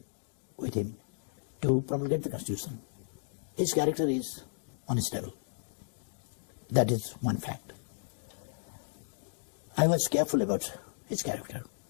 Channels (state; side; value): silent; right; digital silence